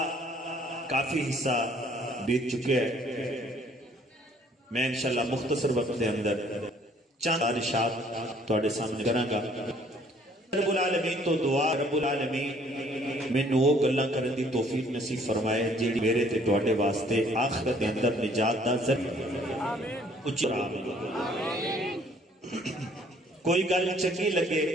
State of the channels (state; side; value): normal; both; correlation 0.60